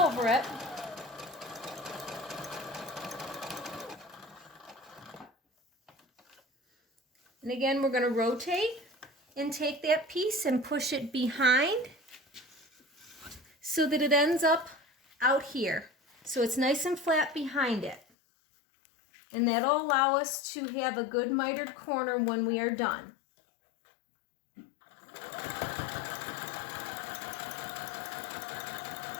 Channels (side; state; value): right; drops out; at 18.0 s